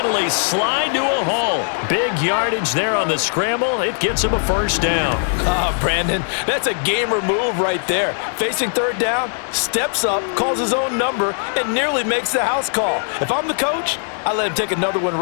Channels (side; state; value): right; silent; digital silence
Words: slide to a hole. Big yardage there on the scramble. It gets him a 1st down. Brandon, that's a gamer move right there. Facing 3rd down, steps up, calls his own number, and nearly makes the house call. If I'm the coach, I let him take another one